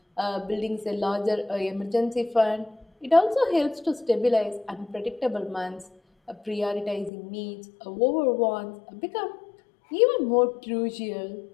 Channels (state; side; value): drops out; right; at 7.1 s